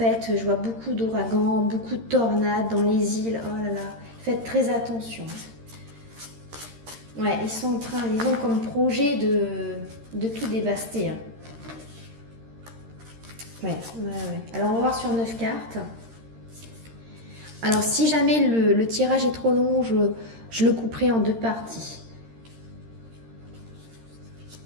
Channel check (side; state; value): left; late; 13 ms